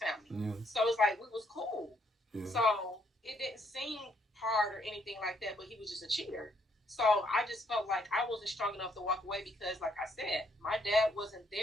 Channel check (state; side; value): normal; both; correlation 0.71